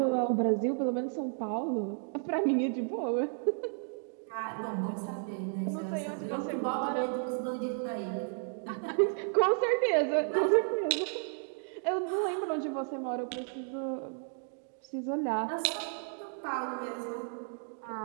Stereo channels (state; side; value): silent; left; 56 dB below the other